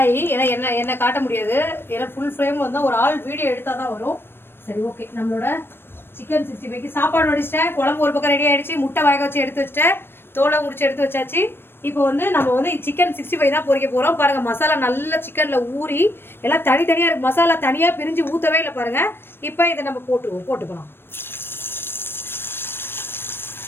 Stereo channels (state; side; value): late; right; 0.10 ms